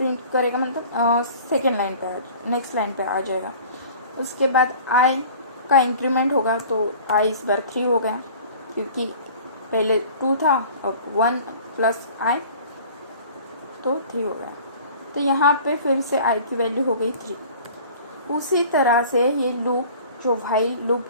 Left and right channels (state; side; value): inverted; both; correlation -0.45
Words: मतलब सेकेंड लाइन पे नेक्स्ट लाइन पे आ जाएगा। उसके बाद i का इंक्रीमेंट होगा, तो i इस बार 3 हो गया, क्योंकि पहले 2 था और 1 प्लस i तो 3 हो गया। तो यहाँ पे फिर से i की वैल्यू हो गई 3। उसी तरह से ये लूप जो व्हाइल